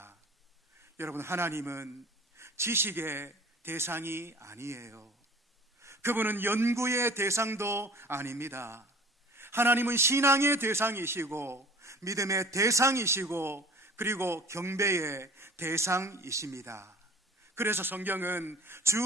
여러분, 하나님은 지식의 대상이 아니에요. 그분은 연구의 대상도 아닙니다. 하나님은 신앙의 대상이시고 믿음의 대상이시고 그리고 경배의 대상이십니다. 그래서 성경은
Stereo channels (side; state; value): both; normal; correlation 0.46